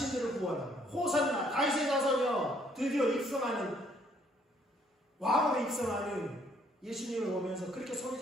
구원하고 호산나 다윗의 자손이여 드디어 입성하는 왕으로 입성하는 예수님을 보면서 그렇게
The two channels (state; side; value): normal; both; correlation 0.65